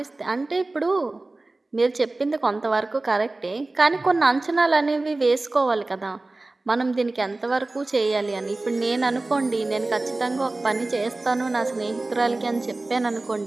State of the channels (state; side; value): quieter; left; 3.1 dB